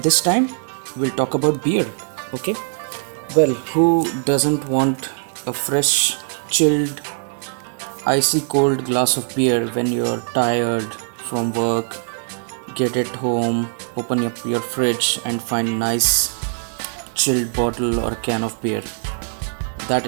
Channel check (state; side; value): silent; left; 64 dB below the other